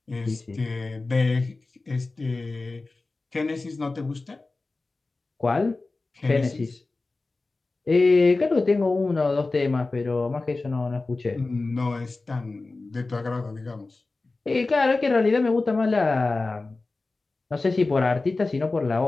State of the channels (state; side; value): quieter; right; 3.4 dB